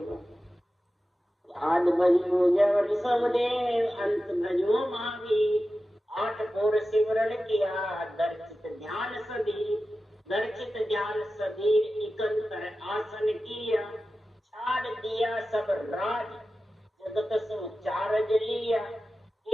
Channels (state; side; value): normal; both; correlation 0.94